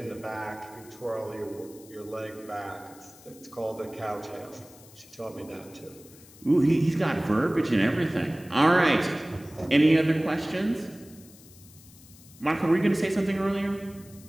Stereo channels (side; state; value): left; noise; hiss, 22 dB below the sound